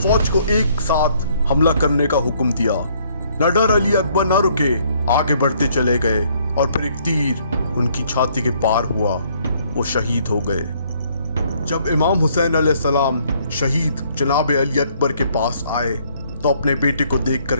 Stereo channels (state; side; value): inverted; both; correlation -0.65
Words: فوج کو ایک ساتھ حملہ کرنے کا حکم دیا۔ نہ ڈر علی اکبر نہ رکے، آگے بڑھتے چلے گئے، اور پھر ایک تیر ان کی چھاتی کے پار ہوا، وہ شہید ہو گئے۔ جب امام حسین علیہ السلام شہید جناب علی اکبر کے پاس آئے تو اپنے بیٹے کو دیکھ کر